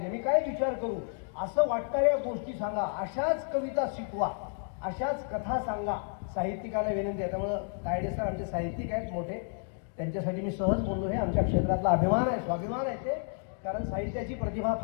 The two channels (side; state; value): right; silent; 57 dB below the other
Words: मी काय विचार करू, असं वाटणाऱ्या गोष्टी सांगा, अशाच कविता शिकवा, अशाच कथा सांगा. साहित्यिकांना विनंती आहे. त्यामुळं तायडे सर आमचे साहित्यिक आहेत मोठे, त्यांच्यासाठी मी सहज बोललो. हे आमच्या क्षेत्रातला अभिमान आहे, स्वाभिमान आहे ते, कारण साहित्याची प्रतिभा